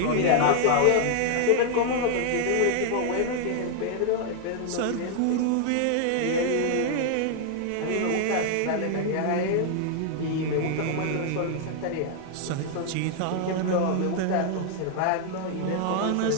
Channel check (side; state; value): both; different; correlation 0.00